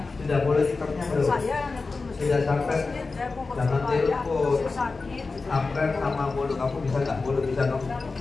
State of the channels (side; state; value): right; quieter; 4.0 dB